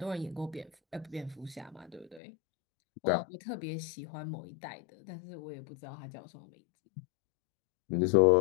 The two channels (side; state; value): right; drops out; at 2.2 s